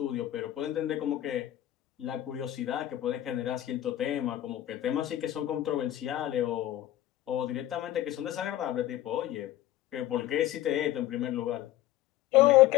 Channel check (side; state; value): right; quieter; 13.5 dB